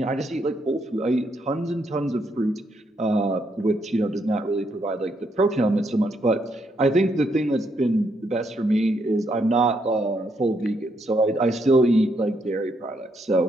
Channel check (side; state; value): both; normal; correlation 0.76